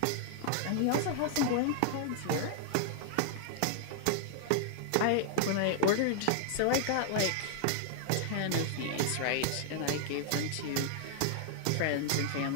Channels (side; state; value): both; different; correlation -0.01